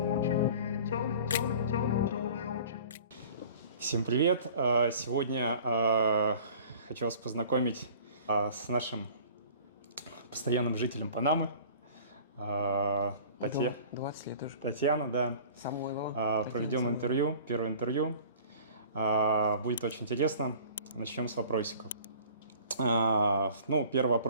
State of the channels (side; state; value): both; inverted; correlation -0.46